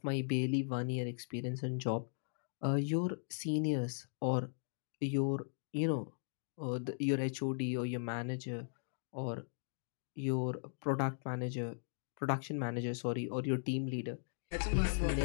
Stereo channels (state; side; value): silent; right; digital silence